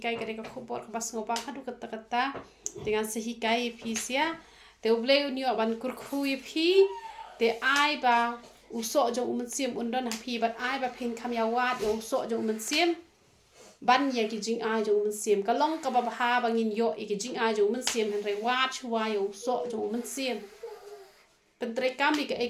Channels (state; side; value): identical; both; correlation 1.00